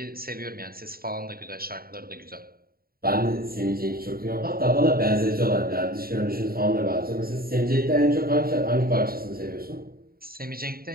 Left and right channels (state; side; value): late; left; 0.43 ms